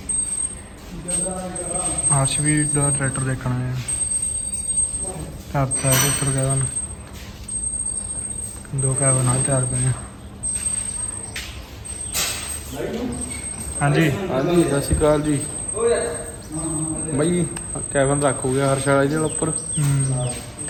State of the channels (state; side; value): identical; both; correlation 1.00